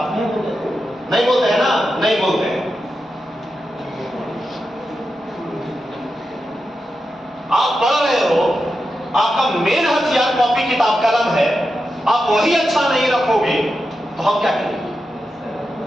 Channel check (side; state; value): both; normal; correlation 0.89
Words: नहीं बोलते हैं ना, नहीं बोलते हैं। आप पढ़ रहे हो, आपका मेन हथियार कॉपी किताब कलम है, आप वही अच्छा नहीं रखोगे तो हम क्या करेंगे।